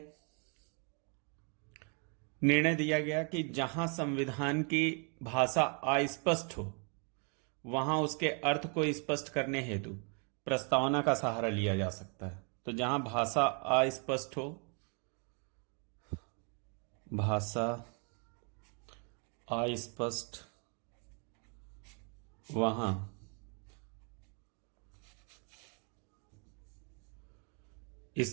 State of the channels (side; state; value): left; quieter; 38.0 dB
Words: निर्णय दिया गया कि जहां संविधान की भाषा अस्पष्ट हो वहां उसके अर्थ को स्पष्ट करने हेतु प्रस्तावना का सहारा लिया जा सकता है। तो जहां भाषा अस्पष्ट हो, वहां